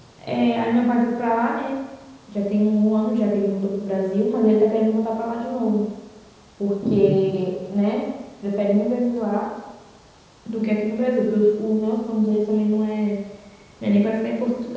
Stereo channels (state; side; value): identical; both; correlation 1.00